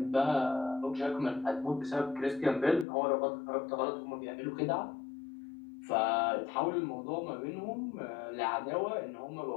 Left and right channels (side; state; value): right; drops out; at 2.9 s